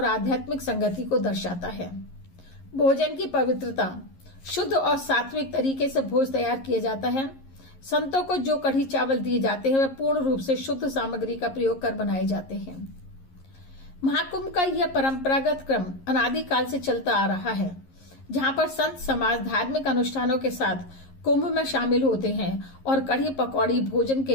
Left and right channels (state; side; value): late; right; 11 ms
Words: आध्यात्मिक संगति को दर्शाता है। भोजन की पवित्रता, शुद्ध और सात्विक तरीके से भोज तैयार किया जाता है। संतों को जो कढ़ी चावल दिए जाते हैं, वे पूर्ण रूप से शुद्ध सामग्री का प्रयोग कर बनाए जाते हैं। महाकुंभ का यह परंपरागत क्रम अनादिकाल से चलता आ रहा है, जहां पर संत समाज धार्मिक अनुष्ठानों के साथ कुंभ में शामिल होते हैं और कढ़ी पकौड़ी भोजन